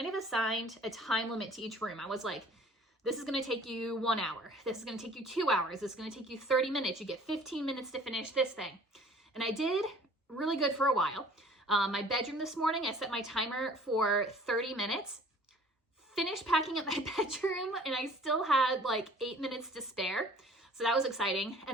of assigned a time limit to each room. I was like, this is going to take you 1 hour. This is going to take you 2 hours. This is going to take you 30 minutes. You get 15 minutes to finish this thing. And I did really good for a while. My bedroom this morning, I set my timer for 30 minutes. Finished packing up my bedroom and I still had like 8 minutes to spare. So that was exciting.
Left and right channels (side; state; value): both; normal; correlation 0.51